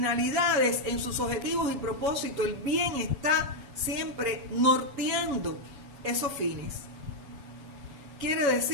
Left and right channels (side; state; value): left; late; 7.2 ms